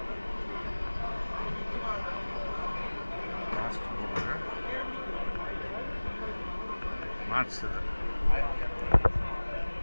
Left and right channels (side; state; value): both; inverted; correlation -1.00